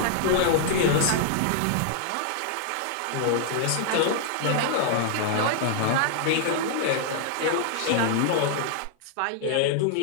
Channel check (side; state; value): both; different; correlation -0.01